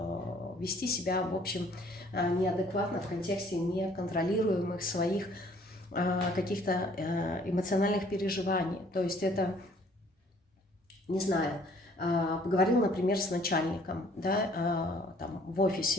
вести себя, в общем, неадекватно в контексте неконтролируемых своих каких-то эмоциональных переживаний. То есть это, не знаю, поговорил, например, с начальником, да, там, в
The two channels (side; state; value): both; normal; correlation 0.58